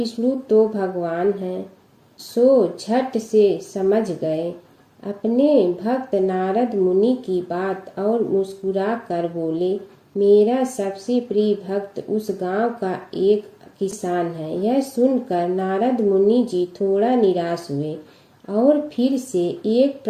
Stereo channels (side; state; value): both; identical; correlation 1.00